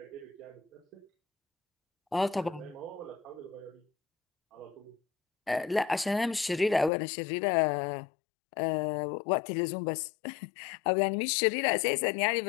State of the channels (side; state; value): right; drops out; at 6.9 s